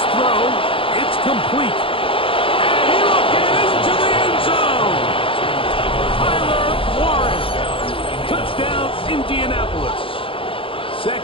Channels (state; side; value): late; right; 0.26 ms